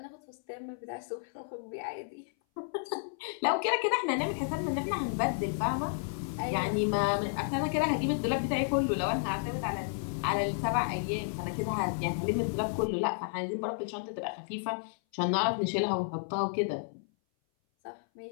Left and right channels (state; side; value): silent; right; 56 dB below the other